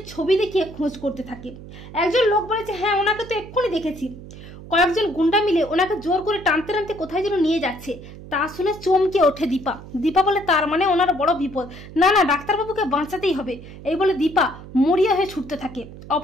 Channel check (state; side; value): noise; right; hum, 15 dB below the sound